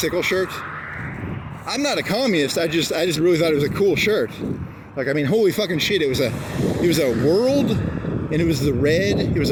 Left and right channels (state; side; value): identical; both; correlation 1.00